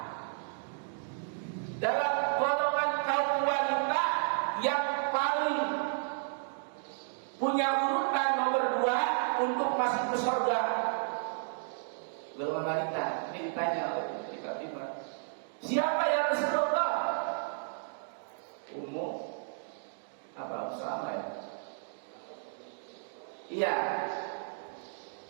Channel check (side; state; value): left; silent; digital silence